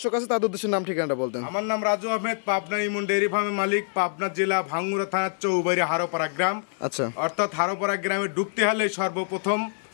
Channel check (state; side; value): silent; right; digital silence